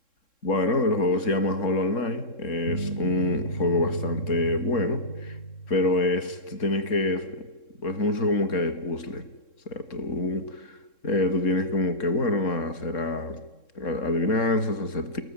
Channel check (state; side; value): late; right; 3.7 ms